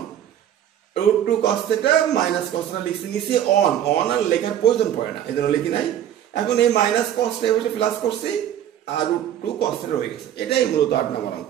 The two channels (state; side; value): quieter; left; 10.7 dB